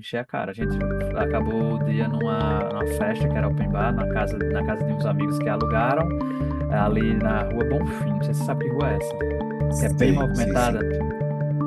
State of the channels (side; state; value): both; identical; correlation 1.00